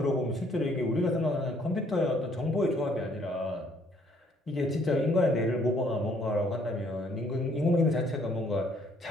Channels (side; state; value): both; normal; correlation 0.65